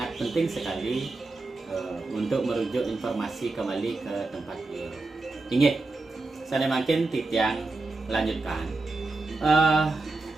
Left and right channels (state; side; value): quieter; left; 3.3 dB